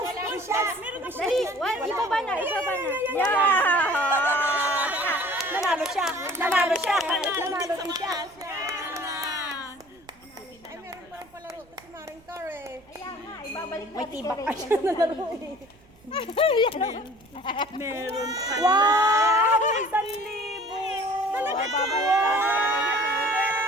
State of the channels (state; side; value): noise; right; rumble, 28 dB below the sound